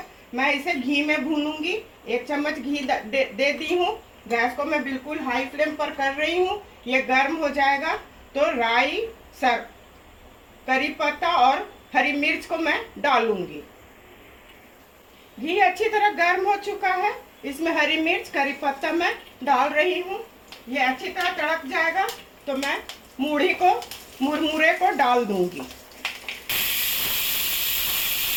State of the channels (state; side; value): identical; both; correlation 1.00